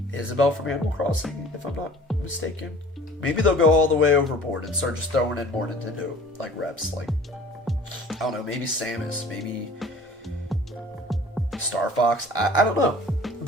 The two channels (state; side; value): normal; both; correlation 0.47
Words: Isabelle from Animal Crossing, if I'm not mistaken. Maybe they'll go all the way overboard and start just throwing in more Nintendo, like, reps. Like, I don't know, maybe Samus, maybe Star Fox. I don't know.